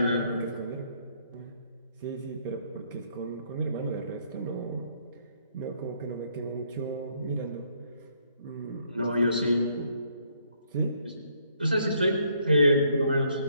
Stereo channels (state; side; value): inverted; both; correlation -0.69